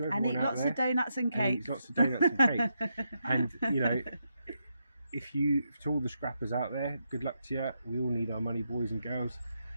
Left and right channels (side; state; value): both; inverted; correlation -0.82